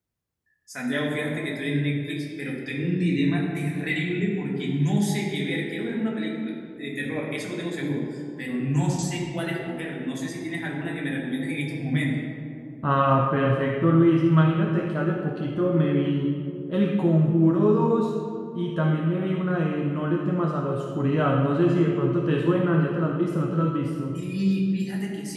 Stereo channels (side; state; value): both; identical; correlation 1.00